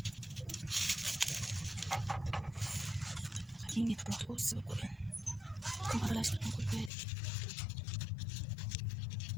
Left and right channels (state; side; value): drops out; right; at 6.9 s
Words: Yine yaprak olsun koyun. Kumaralaştırma koyuyoruz.